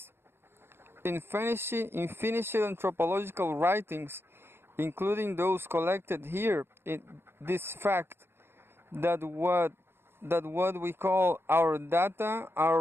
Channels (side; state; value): left; late; 0.11 ms